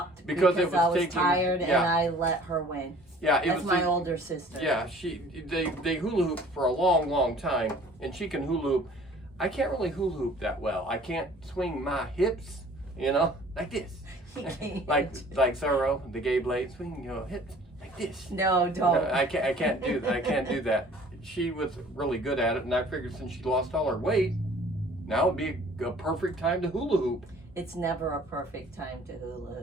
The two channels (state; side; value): normal; both; correlation 0.51